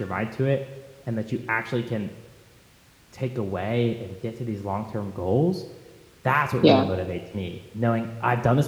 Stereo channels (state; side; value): identical; both; correlation 1.00